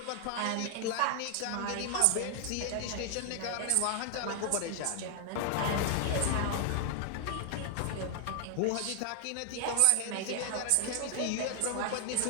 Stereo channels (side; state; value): both; different; correlation 0.00